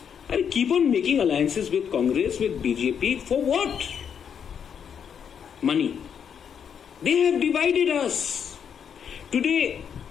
I keep on making alliances with Congress, with BJP, for what? Money. They have divided us. Today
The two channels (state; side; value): quieter; right; 7.7 dB